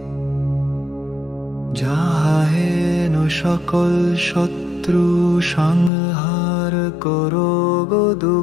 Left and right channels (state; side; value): drops out; right; at 5.9 s